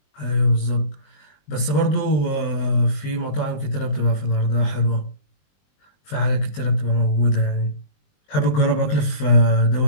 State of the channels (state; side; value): late; right; 20 ms